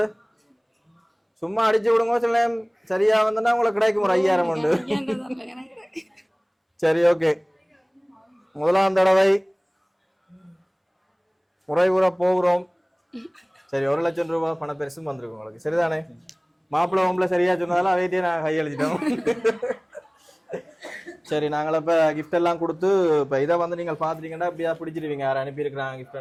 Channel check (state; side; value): identical; both; correlation 1.00